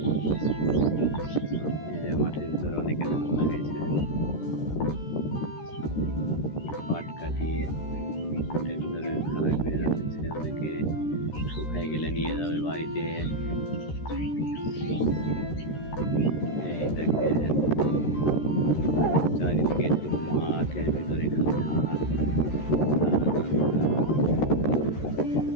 এই যে মাঠের ভিতরে অনেকে ধান লাগাইছে। পাট কাটিয়ে মাঠের ভিতরে খারাপ করে রাখছে, অনেকে শুকাই গেলে নিয়ে যাবে বাড়িতে। এই দেখেন চারিদিকে শুধু মাঠের ভিতরে খালি ধান।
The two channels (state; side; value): late; right; 13 ms